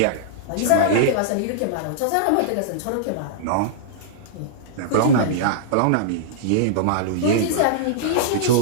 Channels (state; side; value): different; both; correlation -0.02